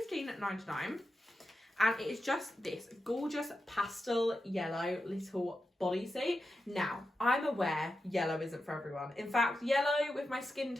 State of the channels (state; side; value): normal; both; correlation 0.90